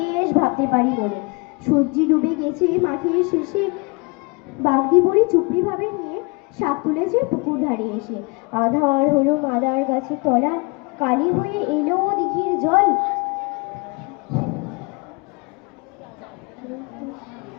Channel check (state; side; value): quieter; right; 29.6 dB